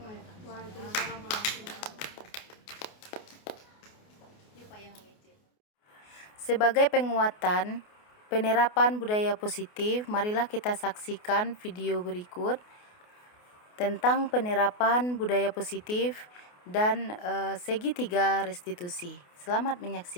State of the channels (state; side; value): late; right; 28 ms